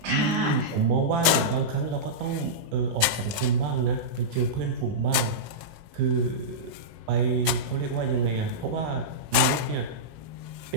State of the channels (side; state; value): left; late; 18 ms